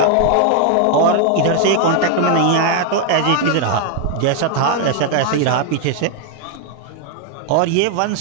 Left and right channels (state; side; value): different; both; correlation 0.00